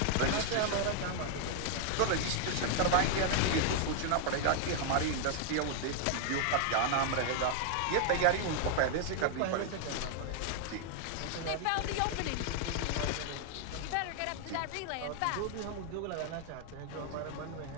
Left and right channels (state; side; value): different; both; correlation 0.00